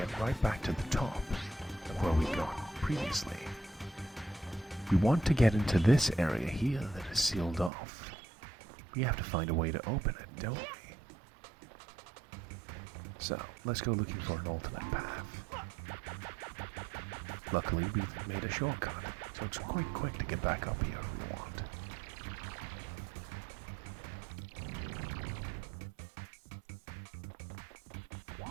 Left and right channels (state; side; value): drops out; left; at 7.7 s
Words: right back to the top of where we got previously. We want to get into this area here that is sealed off. We have to find a way to open it, don't we? So, let's go looking for an alternate path. Luckily, we've made a shortcut, so it's quite quick to get back up here if we want.